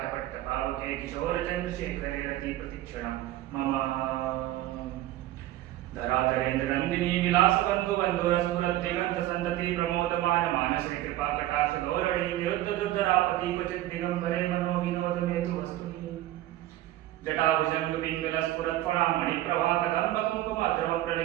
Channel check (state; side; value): quieter; left; 14.9 dB